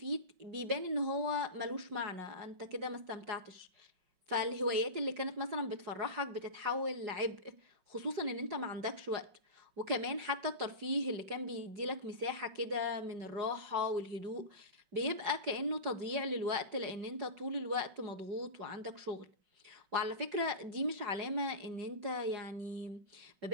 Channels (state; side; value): late; left; 5.4 ms